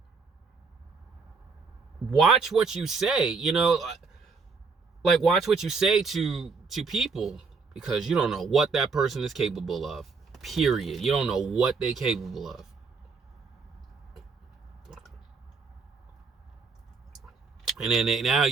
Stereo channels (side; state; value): left; quieter; 4.8 dB